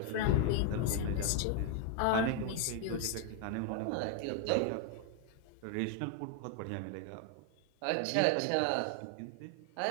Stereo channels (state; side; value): different; both; correlation 0.01